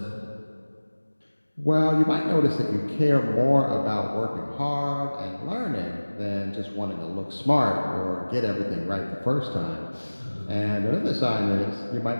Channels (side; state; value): both; inverted; correlation -1.00